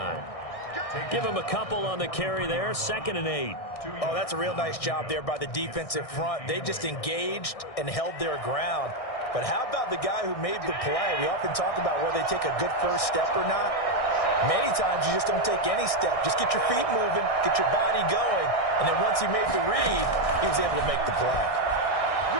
Give him a couple on the carry there. 2nd and 8. Oh, that's a real nice job there by the defensive front. They just engaged and held their ground. But how about the guy who made the play? We often talk about whether they take a good first step or not. Many times you just don't take any step. Just get your feet moving, get your body going, and then once he made the read, he was able to make the play.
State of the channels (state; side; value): late; right; 1.6 ms